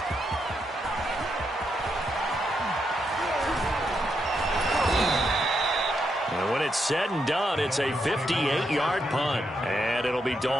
And when it's said and done, it's a 58-yard punt. And it'll be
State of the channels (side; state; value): both; normal; correlation 0.81